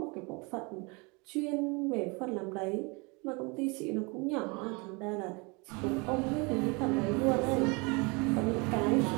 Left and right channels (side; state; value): left; quieter; 29.2 dB